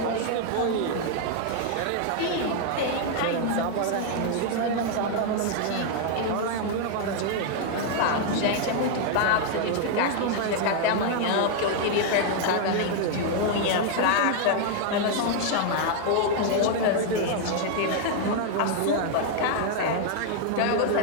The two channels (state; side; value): different; both; correlation 0.00